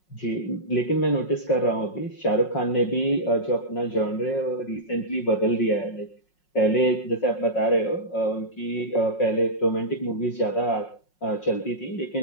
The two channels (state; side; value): late; right; 5.5 ms